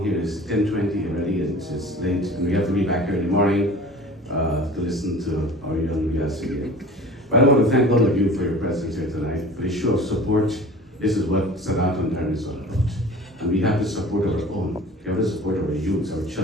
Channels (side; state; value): both; normal; correlation 0.42